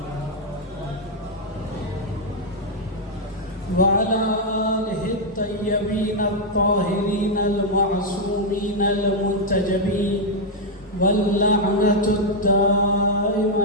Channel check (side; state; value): both; normal; correlation -0.01